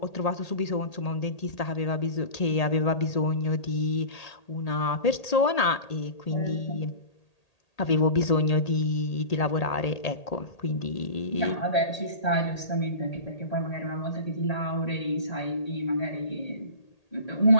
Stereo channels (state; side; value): late; right; 1.8 ms